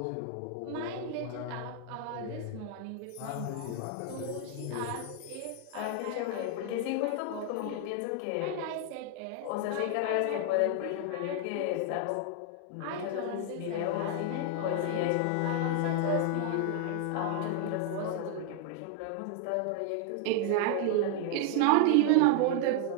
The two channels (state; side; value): different; both; correlation 0.00